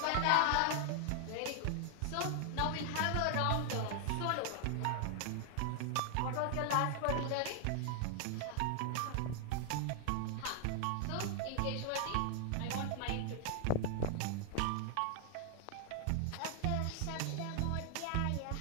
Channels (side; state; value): both; different; correlation 0.00